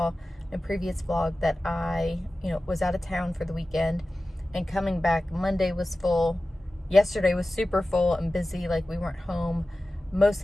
in a previous vlog that I, was out of town for the weekend, and coming back Monday was full. Yesterday was super full and busy. Like, we weren't home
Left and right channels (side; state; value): both; normal; correlation 0.95